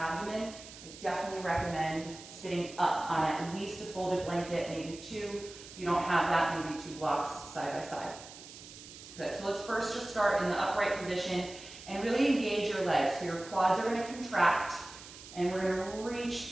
I definitely recommend sitting up on at least a folded blanket, maybe 2. If you don't have that, maybe 2 blocks side by side. Good, so let's first just start in the upright position and really engage your legs. So your quads are going to contract and we're going to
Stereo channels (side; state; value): right; noise; hiss, 16 dB below the sound